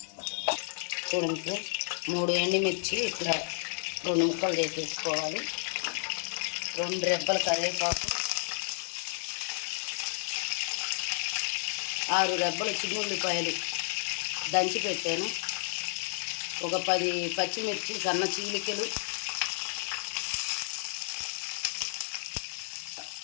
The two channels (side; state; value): right; silent; 57 dB below the other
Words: చూడండి ఫ్రెండ్స్ 3 ఎండుమిర్చి ఇట్లా 2 ముక్కలు వేసేసుకోవాలి, 2 రెబ్బల కరివేపాకు, 6 రెబ్బల చిన్న ఉల్లిపాయలు దంచి పెట్టాను, ఒక 10 పచ్చిమిర్చి సన్న చీలికలు,